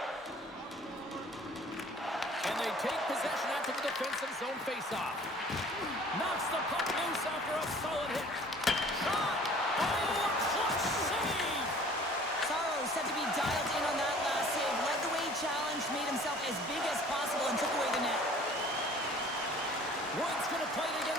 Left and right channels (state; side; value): normal; both; correlation 0.50